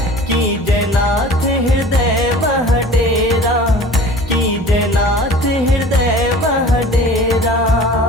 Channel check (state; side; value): normal; both; correlation 0.43